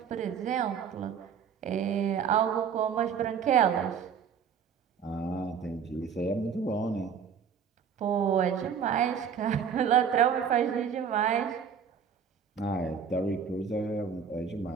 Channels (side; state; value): left; quieter; 7.2 dB